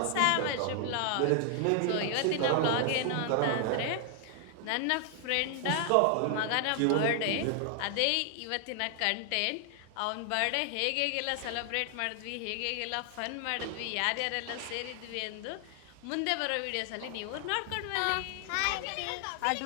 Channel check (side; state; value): both; different; correlation 0.00